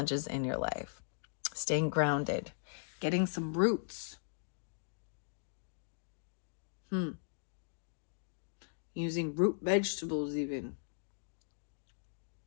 in your life. Staying grounded. Getting some roots. Using root vegetables even.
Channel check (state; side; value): silent; right; digital silence